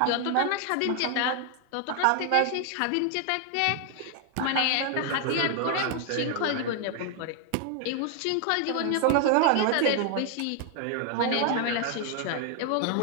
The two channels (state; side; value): different; both; correlation 0.00